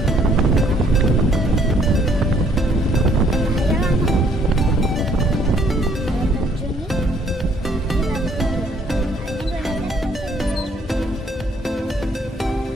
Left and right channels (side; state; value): both; normal; correlation 0.64